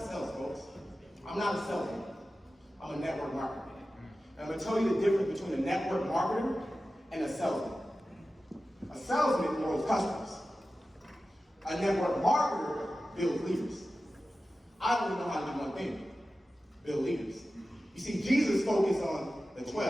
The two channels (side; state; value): both; normal; correlation 0.94